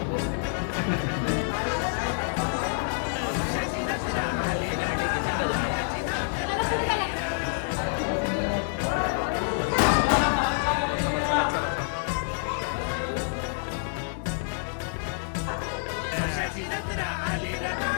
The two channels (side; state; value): right; silent; digital silence